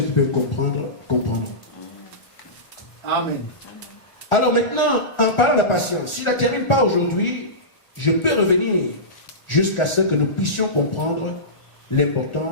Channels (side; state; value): right; late; 1.4 ms